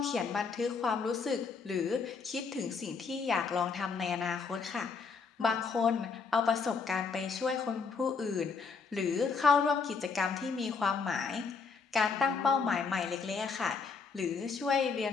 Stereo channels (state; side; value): quieter; right; 5.1 dB